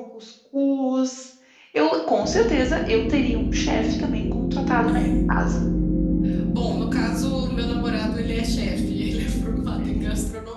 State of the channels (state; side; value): identical; both; correlation 1.00